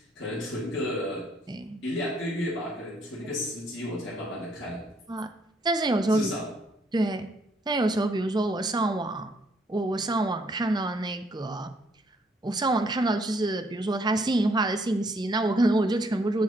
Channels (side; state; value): both; normal; correlation 0.69